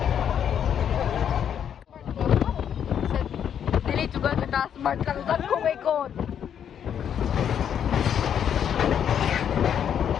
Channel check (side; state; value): right; quieter; 8.8 dB